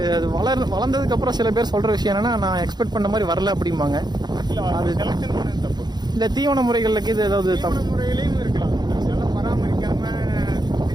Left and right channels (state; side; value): late; left; 0.20 ms